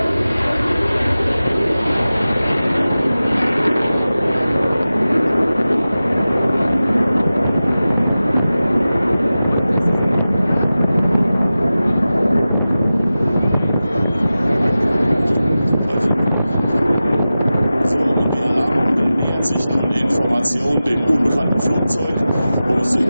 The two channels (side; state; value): both; inverted; correlation -0.95